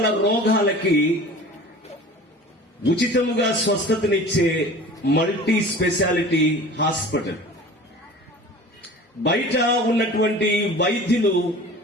రోగాలకి ఉచితముగా స్వస్థతనిచ్చే మల్టీ స్పెషాలిటీ హాస్పిటల్. బయట ఉన్నటువంటి వైద్యులు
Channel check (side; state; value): both; normal; correlation 0.41